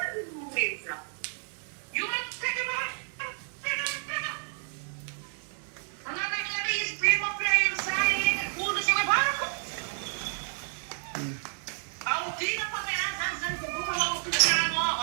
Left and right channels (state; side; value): silent; left; 58 dB below the other